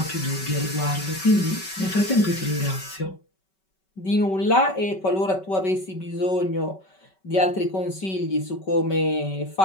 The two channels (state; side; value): late; right; 5.3 ms